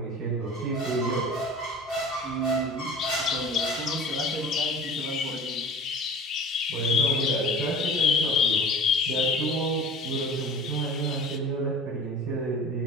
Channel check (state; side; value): normal; both; correlation 0.40